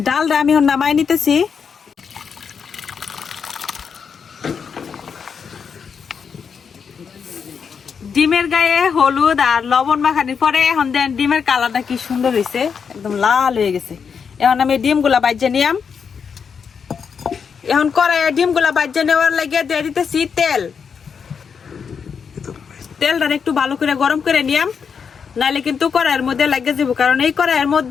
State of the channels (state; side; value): quieter; right; 6.4 dB